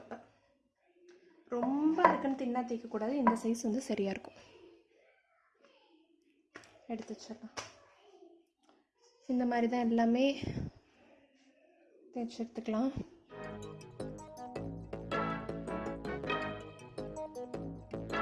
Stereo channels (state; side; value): identical; both; correlation 1.00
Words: ரொம்ப இருக்குன்னு தின்னா தேய்க்கக்கூடாது. இந்த சைஸ் வந்து சரியாக இருக்கும். எடுத்து வச்சிடலாம். இந்த மாதிரி தான் எல்லாமே தேய்ச்சி எடுத்துக்கலாம்.